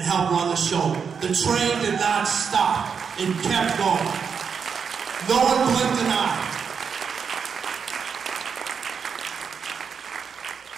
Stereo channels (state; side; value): quieter; left; 6.4 dB